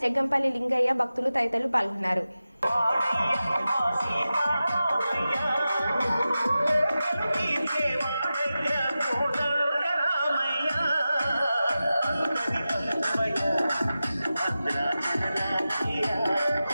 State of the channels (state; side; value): inverted; both; correlation -0.94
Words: జగ్గంపల్లి లింగయ్య భక్తులు తదితరులు పాల్గొన్నారు.